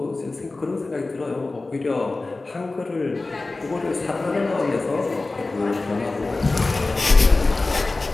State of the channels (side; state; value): right; quieter; 3.3 dB